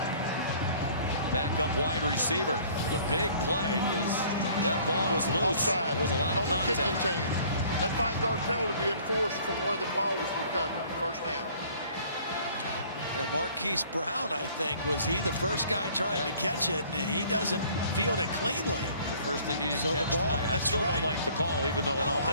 Back up wide receiver. The big play because that ball was loose. Offside. There was a lot of on the contact. kicking team. That 5-yard penalty be enforced from where the ball was recovered. First down. Yeah, Marquise Brown, I think, was he the first guy trying to catch it, and he doesn't field it cleanly. The first thing he didn't so catch the ball, tonight. I still don't like the call, even though it almost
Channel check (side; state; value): both; inverted; correlation -0.54